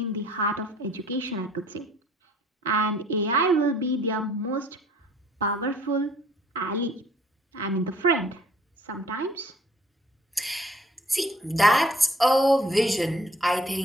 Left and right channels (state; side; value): normal; both; correlation 0.57